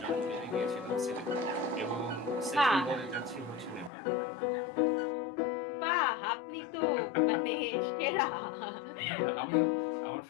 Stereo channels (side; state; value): right; drops out; at 3.9 s